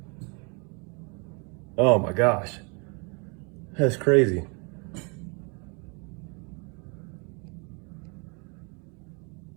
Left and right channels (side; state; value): left; quieter; 33.9 dB